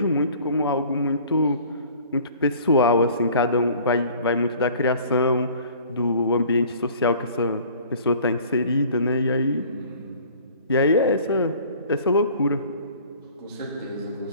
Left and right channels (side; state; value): both; inverted; correlation -0.50